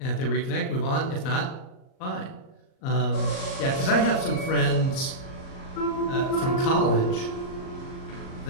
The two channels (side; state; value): right; late; 38 ms